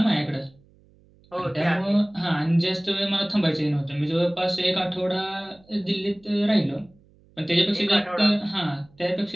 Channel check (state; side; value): noise; right; hum, 30 dB below the sound